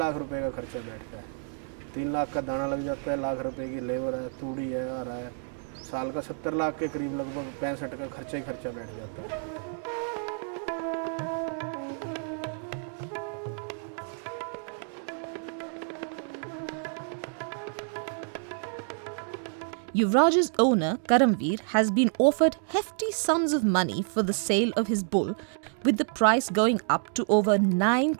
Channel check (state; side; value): silent; left; 59 dB below the other